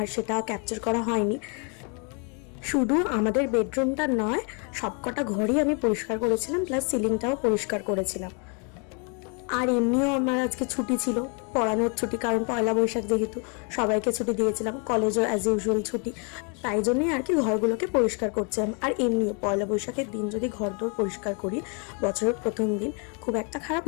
সেটা ক্যাপচার করা হয়নি। শুধু আমাদের বেডরুমটা নয়, সবকটা ঘরই আমি পরিষ্কার করেছিলাম, প্লাস সিলিংটাও পরিষ্কার করেছিলাম। আর এমনিও আমার আজকে ছুটি ছিল, পড়ানোর ছুটি, কারণ পয়লা বৈশাখ যেহেতু সবাইকে ছুটি দিয়েছিলাম, কলেজও অ্যাজ ইউজুয়াল ছুটি। তাই জন্যই আর কি ঘরগুলোকে পরিষ্কার করছিলাম। আর এমনিও পয়লা বৈশাখের দিন যদি ঘরদোর পরিষ্কার করি, বছরের প্রথম দিন, খুব একটা খারাপ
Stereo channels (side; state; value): right; quieter; 37.0 dB